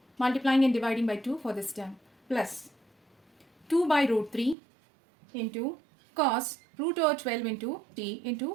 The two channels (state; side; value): drops out; left; at 4.5 s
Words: Multiplying and dividing by 2 for this term, plus 2 by root 3 into cos root over 12 into t